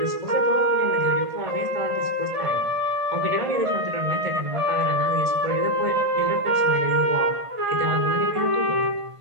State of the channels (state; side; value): late; left; 1.5 ms